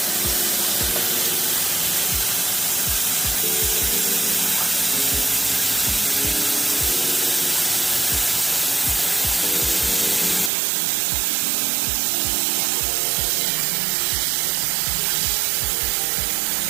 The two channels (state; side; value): drops out; left; at 10.5 s